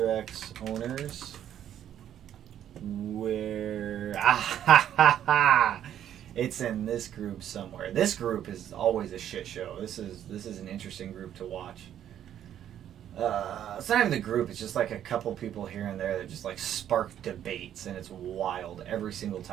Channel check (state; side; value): quieter; left; 10.5 dB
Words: owners. Where? It's in this group somewhere. This group is always a shit show. This is an interesting group to watch. It's not even the group. It's just like a couple people here and there that just like spark debates, and it's wild every single